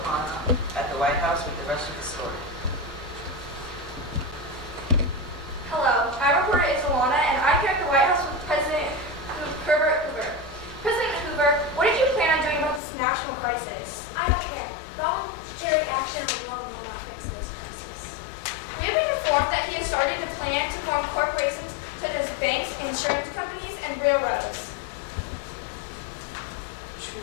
at the White House with the rest of the story. Hello, I'm reporter Isilhana, and I'm here at the White House with President Herbert Hoover. President Hoover, what did you plan on doing about this national crisis? I don't care. Voluntary action alone will not fix this crisis. We have been informed that he has started a plan to form corporations such as banks, insurance companies, and railroads.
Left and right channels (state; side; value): drops out; right; at 12.8 s